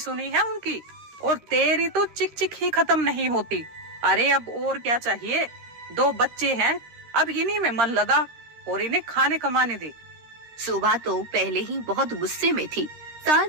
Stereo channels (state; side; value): late; left; 13 ms